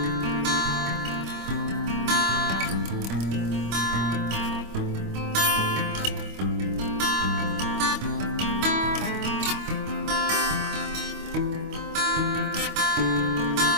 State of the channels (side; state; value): left; late; 25 ms